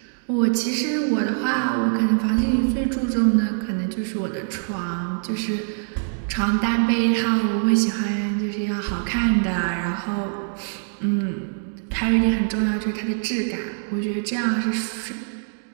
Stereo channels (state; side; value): silent; left; digital silence